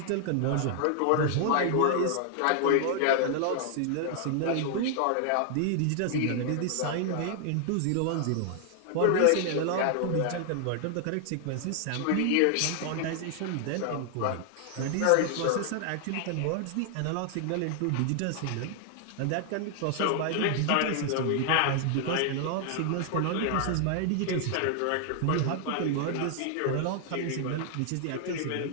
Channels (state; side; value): different; both; correlation 0.00